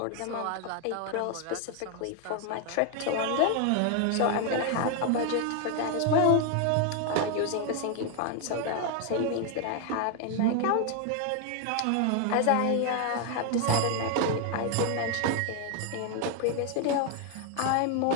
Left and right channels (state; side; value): different; both; correlation 0.00